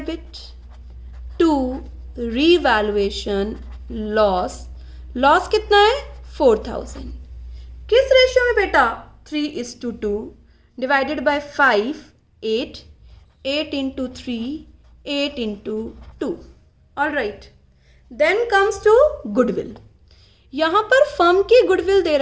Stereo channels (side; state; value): both; identical; correlation 1.00